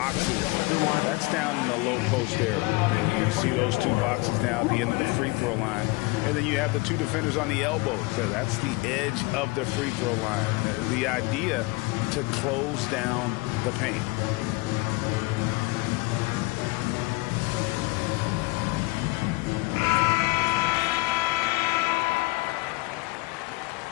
that's down in the low post area. And you see those 2 boxes down at the end of the free throw line. And then you have the 2 defenders on the elbows. So that's the edge of the free throw line. The idea to close down the paint.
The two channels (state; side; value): quieter; right; 24.4 dB